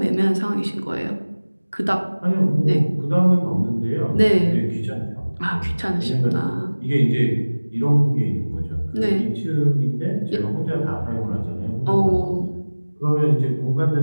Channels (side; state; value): both; inverted; correlation -1.00